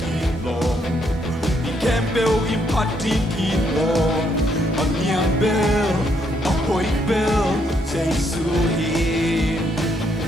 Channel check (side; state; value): both; normal; correlation 0.73